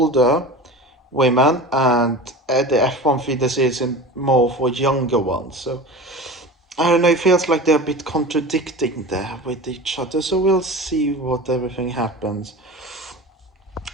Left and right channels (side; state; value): both; normal; correlation 0.33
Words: women, and the F1 feeder series is more for younger ones. So I don't know, it feels like they're a bit contradicting there with each other, so we'll see what everything happens.